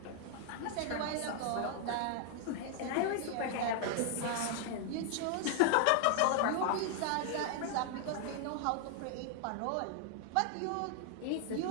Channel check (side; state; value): both; different; correlation 0.00